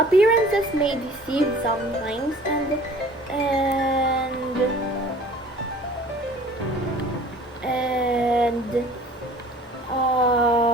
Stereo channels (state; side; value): normal; both; correlation 0.49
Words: may deceive sometimes, and and